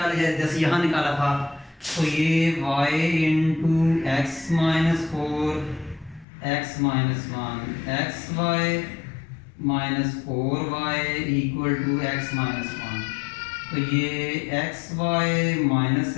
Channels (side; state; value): right; drops out; at 6.2 s